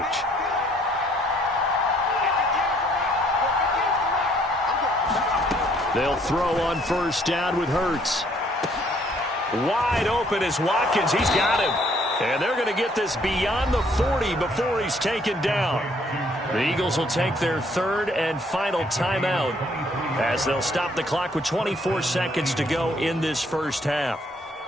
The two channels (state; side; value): normal; both; correlation 0.64